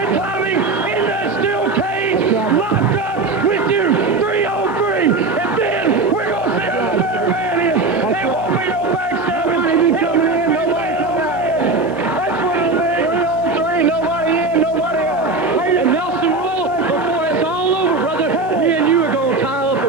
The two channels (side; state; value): left; quieter; 3.5 dB